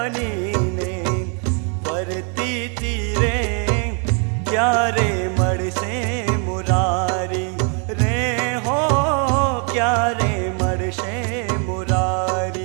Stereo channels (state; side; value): quieter; left; 39.4 dB